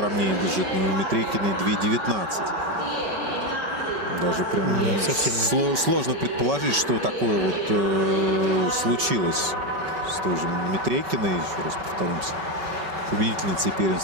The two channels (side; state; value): left; late; 5.3 ms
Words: бежит, но у Митрейкиной 2:19. Даже прям совсем сложно предположить, что такое вот случилось с той же Митрейкиной. Еще раз повторимся. Победительницей